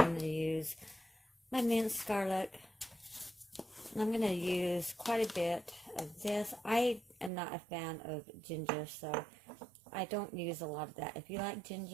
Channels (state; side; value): drops out; left; at 7.3 s